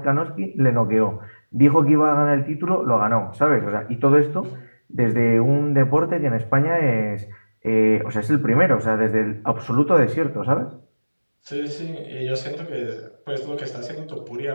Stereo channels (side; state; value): both; inverted; correlation -1.00